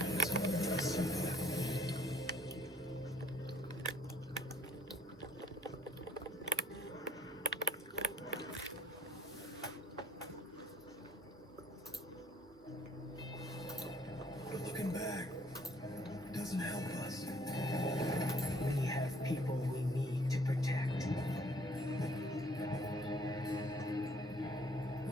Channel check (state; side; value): normal; both; correlation 0.60